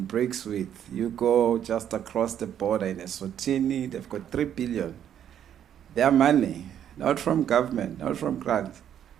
BRICS with. You go just across the border in Eswatini, they've got 3 billion. Their money, not from government, not from grants,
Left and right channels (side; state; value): left; quieter; 9.8 dB